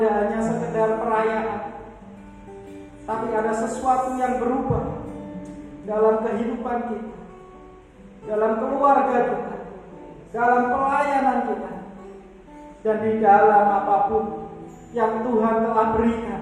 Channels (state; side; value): identical; both; correlation 1.00